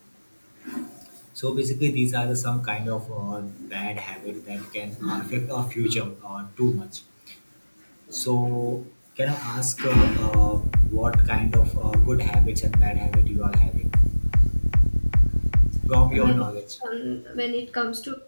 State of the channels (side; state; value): both; inverted; correlation -1.00